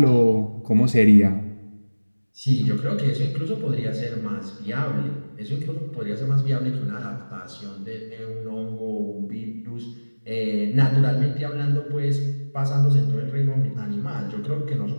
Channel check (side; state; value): both; inverted; correlation -1.00